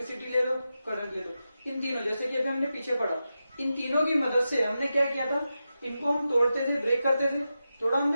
ले लो, करंट ले लो। इन तीनों, जैसे कि अभी हमने पीछे पढ़ा, इन तीनों की मदद से हमने क्या किया था, इनको हम तोड़ते थे, ब्रेक करते थे, तोड़ा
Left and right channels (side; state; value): both; inverted; correlation -0.91